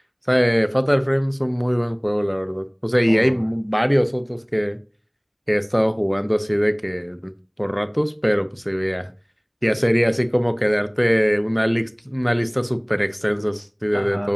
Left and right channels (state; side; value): identical; both; correlation 1.00